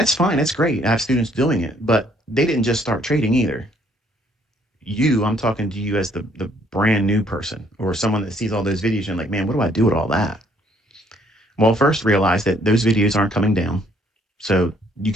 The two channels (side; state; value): both; normal; correlation 0.65